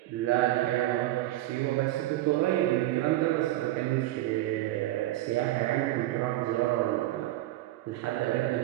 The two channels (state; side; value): quieter; left; 15.9 dB